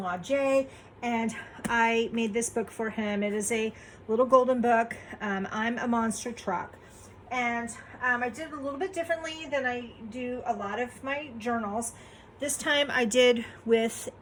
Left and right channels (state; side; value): identical; both; correlation 1.00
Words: Jay, and I made this book for him. It is a little golden book. I'm a monster truck. And I did it a little bit differently than I do a lot of my journals. This time I did with